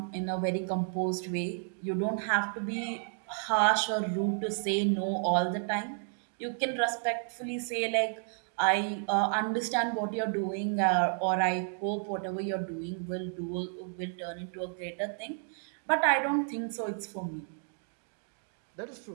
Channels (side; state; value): left; silent; 57 dB below the other